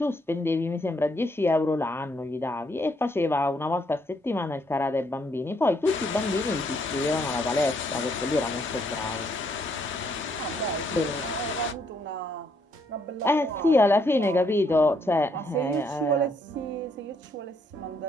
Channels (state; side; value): normal; both; correlation 0.72